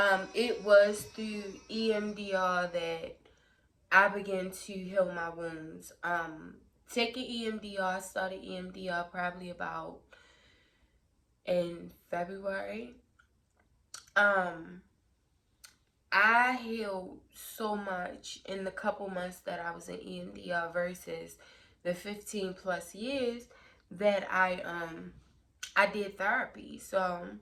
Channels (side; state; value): both; identical; correlation 1.00